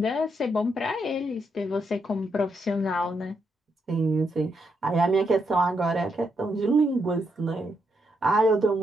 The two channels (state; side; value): normal; both; correlation 0.79